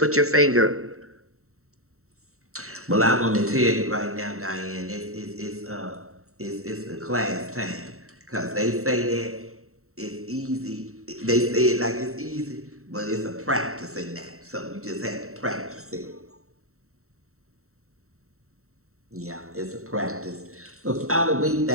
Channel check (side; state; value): left; late; 0.63 ms